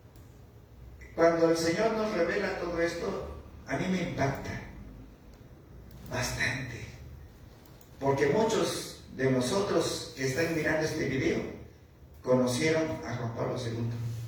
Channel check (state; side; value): identical; both; correlation 1.00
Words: Cuando el Señor nos revela todo esto, a mí me impacta bastante. Porque muchos de nosotros que están mirando este video conocieron a Juan Pablo II.